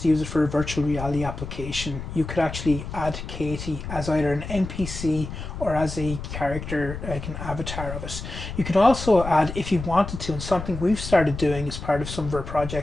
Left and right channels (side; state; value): left; noise; rumble, 8 dB below the sound